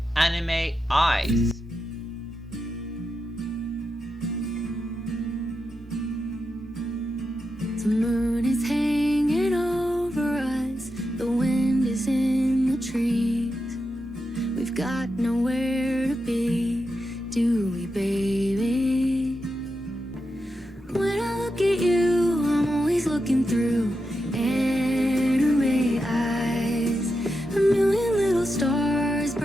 Anime Eyes. The moon is hanging over us, the wind is in the trees. We've got nowhere to be, do we, baby? When I look at you, I'm always looking through anime eyes. A million little stars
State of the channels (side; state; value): both; normal; correlation 0.88